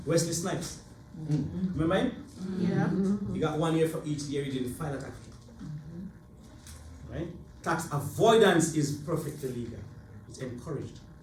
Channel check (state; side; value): identical; both; correlation 1.00